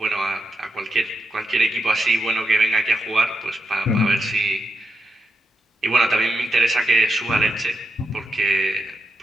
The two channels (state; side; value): normal; both; correlation 0.85